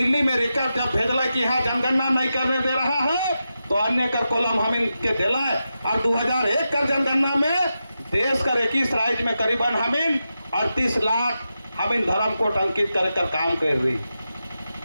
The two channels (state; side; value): inverted; both; correlation -0.89